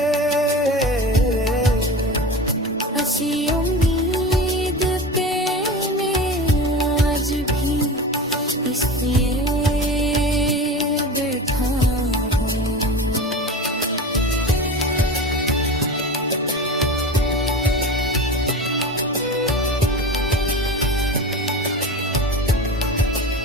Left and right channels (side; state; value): both; normal; correlation 0.30